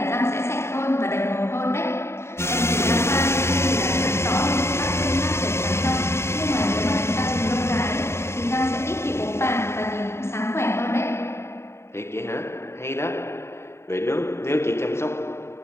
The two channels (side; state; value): right; late; 0.13 ms